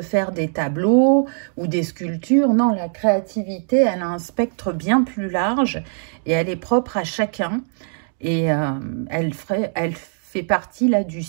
faire des tableaux ou des sculptures. Non, la créativité, elle a un spectre bien plus large et elle est propre à chacun. Et elle fait partie là du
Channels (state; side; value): silent; left; digital silence